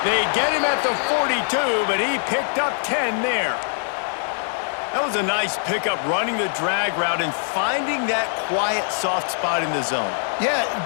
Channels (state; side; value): silent; right; 64 dB below the other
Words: They get him at the 42, but he picked up 10 there. That was a nice pickup, running the drag route and finding that quiet, soft spot in the zone. Yeah,